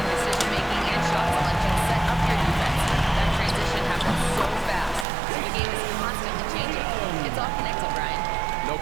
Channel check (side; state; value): left; drops out; at 5.1 s